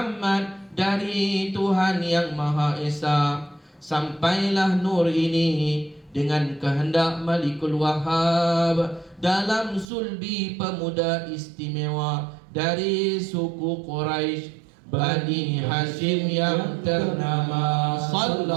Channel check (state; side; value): drops out; left; at 9.9 s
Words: dari Tuhan Yang Maha Esa. Sampailah nur ini dengan kehendak Malikul Wahhab dalam sulbi pemuda istimewa dari suku Quraisy Bani Hashim yang ternama.